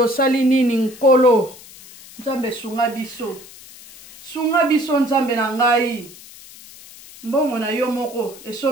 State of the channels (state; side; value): noise; left; hiss, 19 dB below the sound